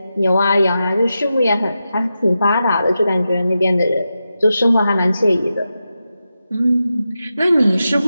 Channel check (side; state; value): both; inverted; correlation -0.90